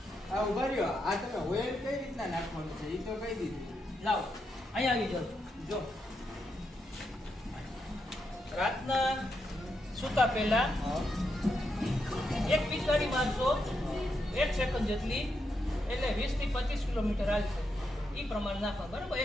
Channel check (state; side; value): normal; both; correlation 0.83